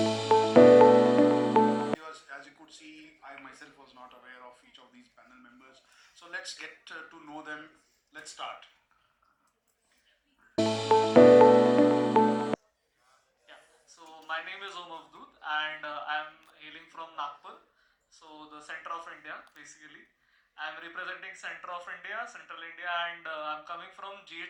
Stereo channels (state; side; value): identical; both; correlation 1.00